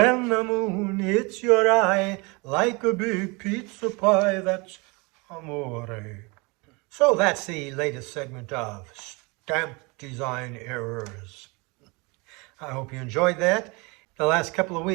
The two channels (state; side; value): quieter; left; 27.9 dB